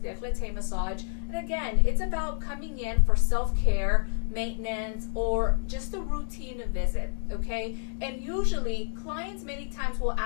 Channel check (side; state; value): right; silent; digital silence